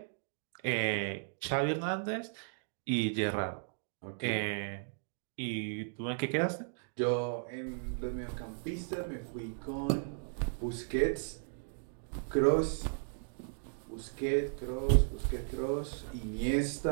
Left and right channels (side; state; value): left; silent; digital silence